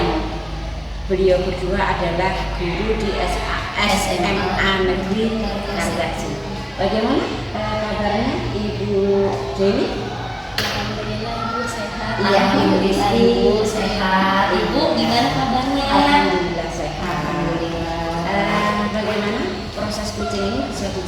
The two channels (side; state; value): both; identical; correlation 1.00